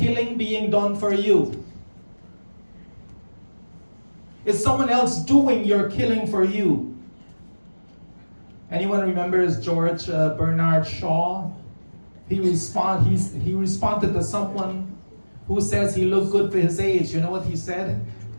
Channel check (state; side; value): inverted; both; correlation -1.00